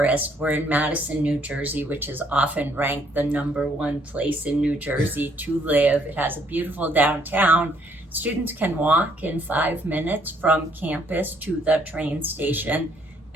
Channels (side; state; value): both; normal; correlation 0.67